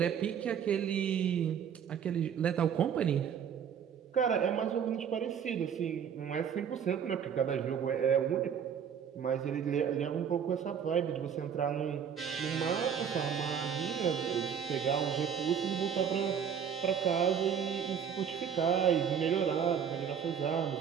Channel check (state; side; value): quieter; left; 7.8 dB